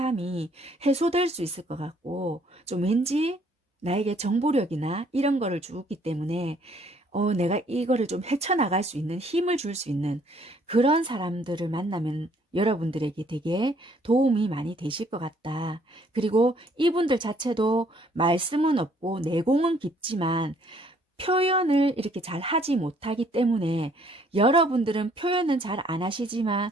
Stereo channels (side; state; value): both; normal; correlation 0.63